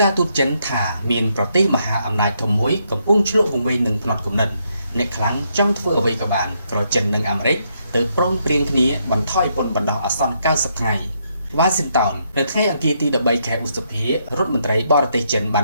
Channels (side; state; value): both; inverted; correlation -0.76